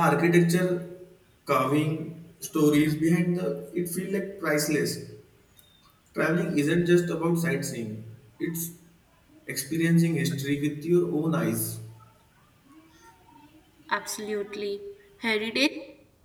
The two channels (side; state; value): both; identical; correlation 1.00